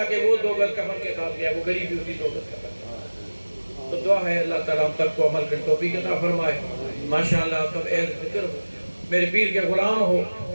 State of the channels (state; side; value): inverted; both; correlation -1.00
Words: کہ وہ 2 گز کفن کے ساتھ گیا وہ غریب بھی اسی 2 گز کفن تو دعا ہے اللہ تعالیٰ ہم سب کو عمل کر توفیق عطا فرمائے ماشاءاللہ سب اہل ذکر ہو میرے پیر کے غلام ہو